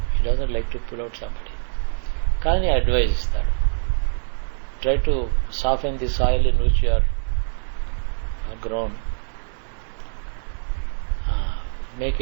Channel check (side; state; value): left; silent; 61 dB below the other